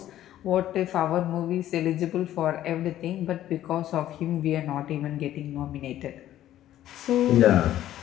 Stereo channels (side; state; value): right; quieter; 12.8 dB